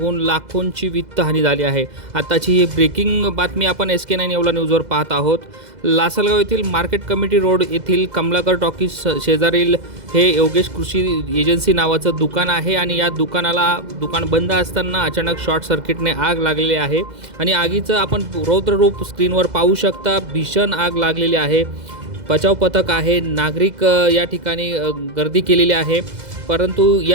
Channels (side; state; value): left; late; 2.0 ms